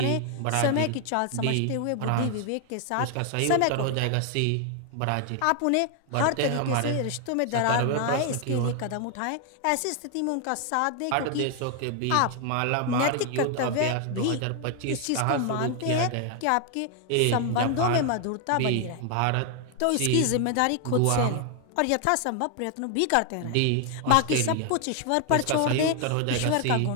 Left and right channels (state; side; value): different; both; correlation 0.00